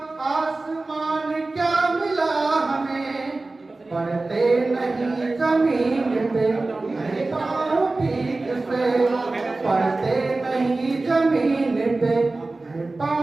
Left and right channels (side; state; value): left; quieter; 3.3 dB